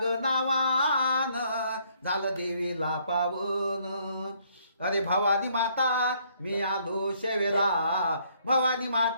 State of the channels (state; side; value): inverted; both; correlation -0.67